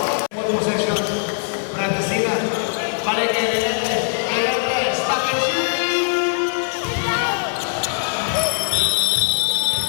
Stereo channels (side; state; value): right; silent; 65 dB below the other